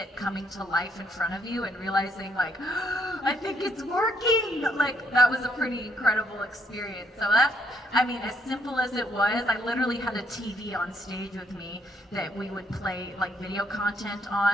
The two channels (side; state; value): both; normal; correlation 0.70